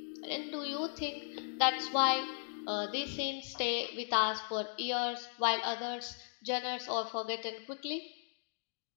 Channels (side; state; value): right; silent; digital silence